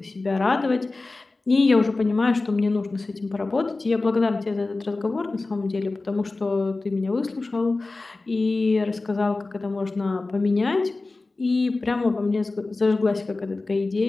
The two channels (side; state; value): right; quieter; 3.4 dB